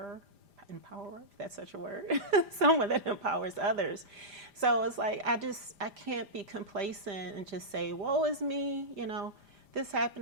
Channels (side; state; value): left; late; 5.0 ms